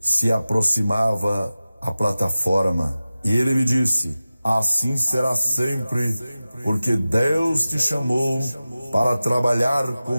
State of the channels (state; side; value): inverted; both; correlation -0.96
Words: aproximava à plataforma. E ele me disse, assim será sempre, porque Deus te chamou para trabalhar